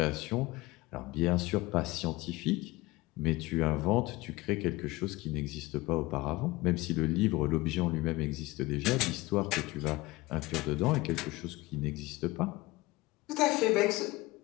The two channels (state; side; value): quieter; right; 20.7 dB